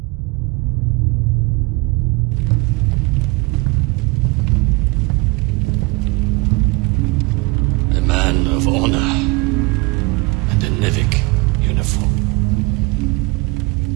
A man of honor and a NEVEC uniform.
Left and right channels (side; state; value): left; quieter; 26.3 dB